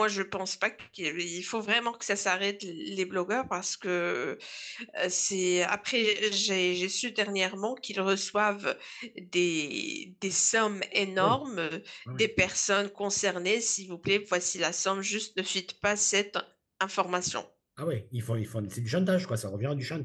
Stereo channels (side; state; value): both; identical; correlation 1.00